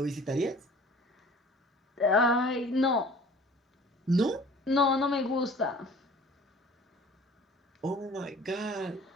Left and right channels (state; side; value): normal; both; correlation 0.48